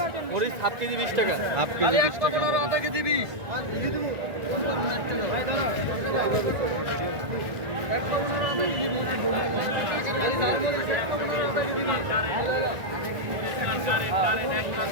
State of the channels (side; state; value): left; late; 1.4 ms